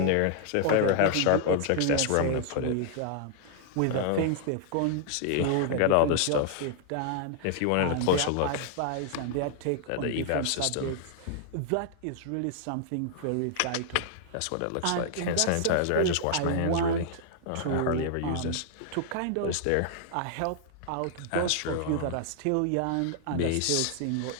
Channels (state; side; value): different; both; correlation -0.01